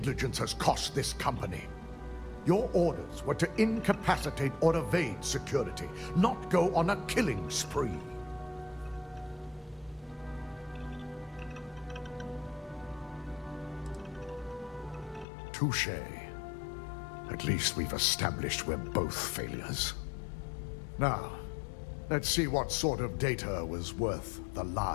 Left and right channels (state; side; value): drops out; right; at 15.2 s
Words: has cost this company. Your orders were to incapacitate or evade security, not go on a killing spree. Touché. At least we've established we're both failures. Now, let's see what sort of data was worth the